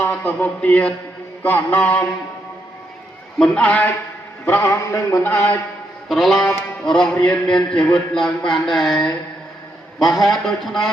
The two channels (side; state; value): both; normal; correlation 0.79